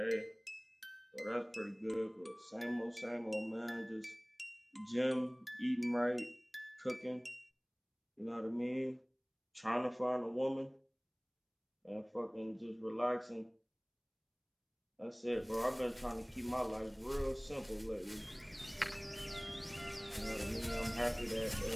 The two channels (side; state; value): both; identical; correlation 1.00